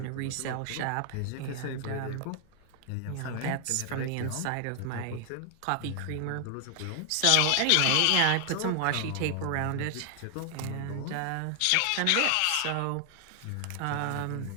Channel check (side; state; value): both; different; correlation 0.00